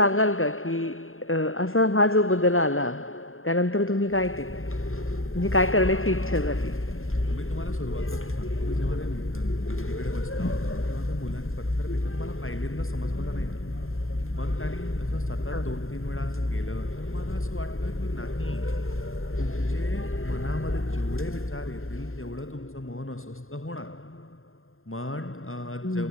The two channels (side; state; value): right; late; 0.61 ms